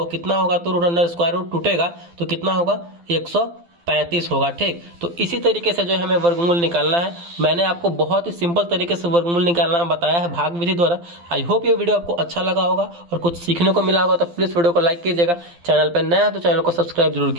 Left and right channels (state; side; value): late; left; 12 ms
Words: कितना होगा, तो रूट अंडर स्क्वायर रूट टूटेगा तो कितना होगा, 135 होगा, ठीक। तो इसी तरीके से जो है हमें वर्गमूल निकालना है। मैंने आपको बहुत ही सिंपल तरीके से वर्गमूल निकालना बताया है भाग विधि द्वारा। आई होप ये वीडियो आपको अच्छा लगा होगा और कुछ सीखने को मिला होगा। तो प्लीज वीडियो को लाइक कीजिएगा, चैनल पर नया है तो चैनल को सब्सक्राइब जरूर